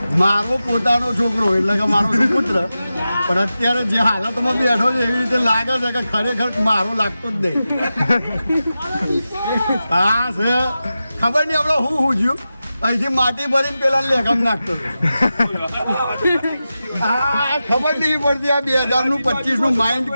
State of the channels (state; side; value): inverted; both; correlation -0.92